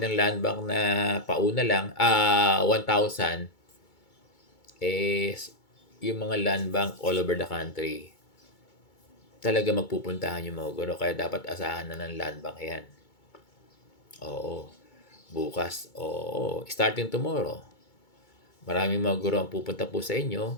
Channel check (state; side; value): late; right; 2.2 ms